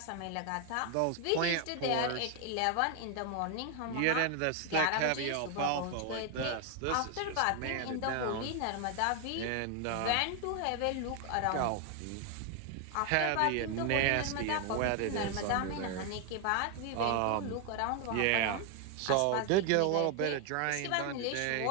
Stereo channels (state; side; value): different; both; correlation 0.01